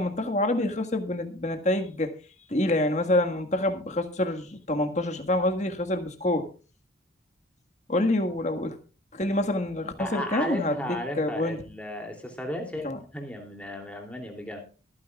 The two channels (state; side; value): normal; both; correlation 0.46